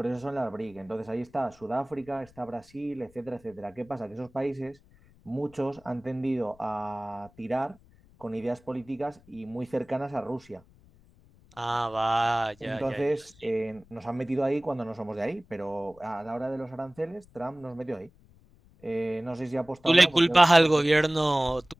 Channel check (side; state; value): left; noise; rumble, 27 dB below the sound